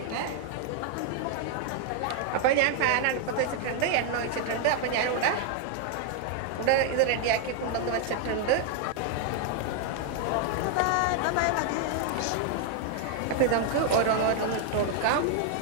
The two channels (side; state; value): both; different; correlation 0.00